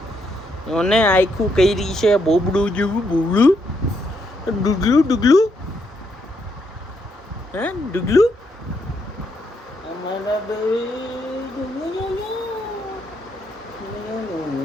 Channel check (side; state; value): both; normal; correlation 0.76